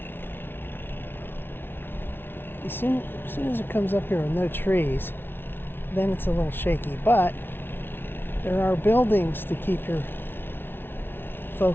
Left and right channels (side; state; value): right; late; 0.11 ms